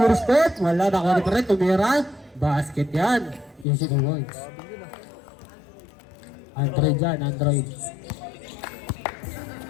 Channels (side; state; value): right; drops out; at 3.7 s